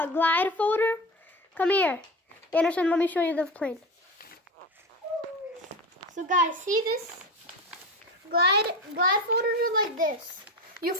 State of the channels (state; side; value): normal; both; correlation 0.25